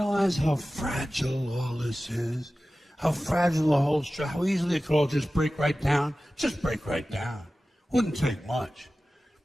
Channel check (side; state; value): both; normal; correlation 0.96